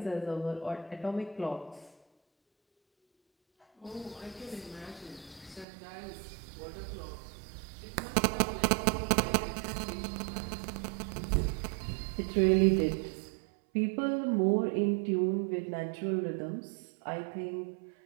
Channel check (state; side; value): drops out; left; at 5.7 s